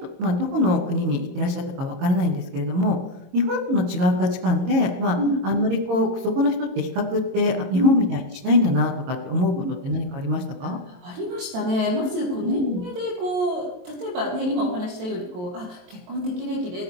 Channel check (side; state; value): left; late; 23 ms